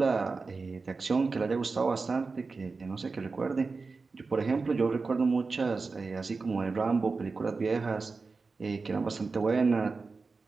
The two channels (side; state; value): left; quieter; 4.2 dB